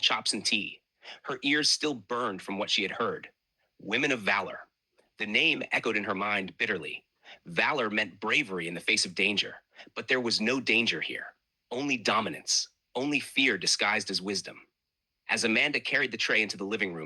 and tea. Her ears still burned from what she had heard. Women of Valor. The name echoed in her mind bitterly. Valor meant bravery in the face of danger, but there was no danger here. Only dominance, only fear disguised as wisdom. As Amanda carried the tray into the living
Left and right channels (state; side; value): identical; both; correlation 1.00